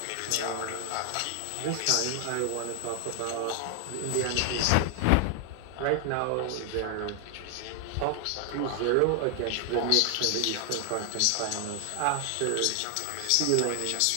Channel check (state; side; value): different; both; correlation 0.00